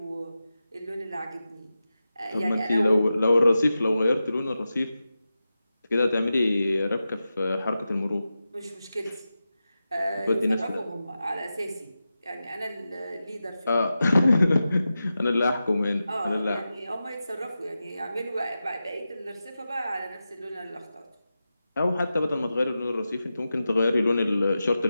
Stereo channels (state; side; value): inverted; both; correlation -0.92